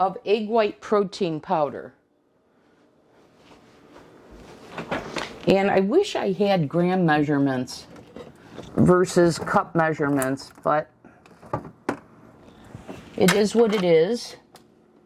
of egg white protein powder. And I wish I had gram measurements versus cup measurements, but it is what it is.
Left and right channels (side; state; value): both; identical; correlation 1.00